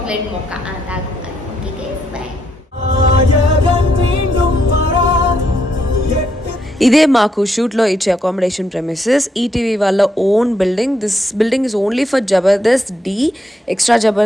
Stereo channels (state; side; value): normal; both; correlation 0.77